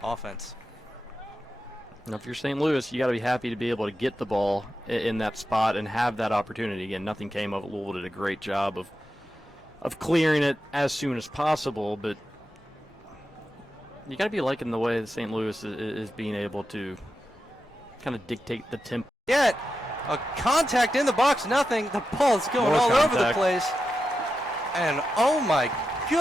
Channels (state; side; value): normal; both; correlation 0.90